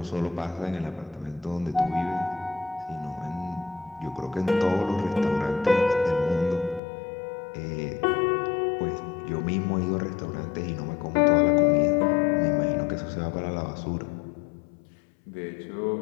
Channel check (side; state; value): right; drops out; at 6.8 s